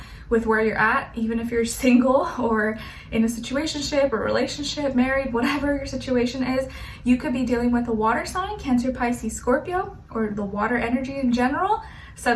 with where you're at, even if you're single or in a situationship or relationship, married, whatever your situation is. You could be dealing with a water sign, Cancer, Pisces, Scorpio, or the water energy in general.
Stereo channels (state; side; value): identical; both; correlation 1.00